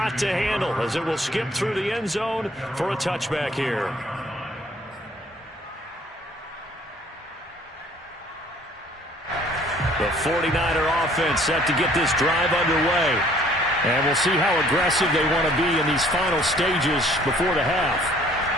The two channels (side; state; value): both; normal; correlation 0.58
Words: to handle as it will skip through the end zone for a touchback here. The 49er offense set to get this drive underway. And we'll see how aggressive they want to be in these final stages before the half.